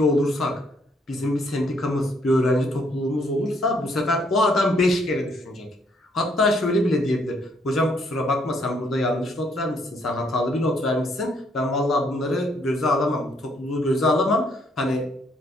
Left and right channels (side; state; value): both; normal; correlation 0.69